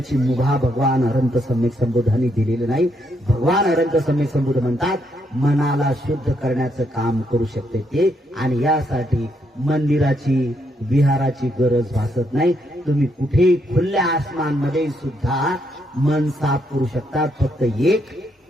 मुभा भगवान अनंत सम्यक संबोधांनी दिलेली नाही. भगवान अनंत सम्यक संबोध म्हणतात, मनाला शुद्ध करण्याचं काम करू शकते ते. आणि यासाठी मंदिराची, विहाराची गरज भासत नाही. तुम्ही कुठेही खुल्या आसमानमध्ये सुद्धा मन साफ करू शकता. फक्त एक,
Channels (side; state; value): both; normal; correlation 0.76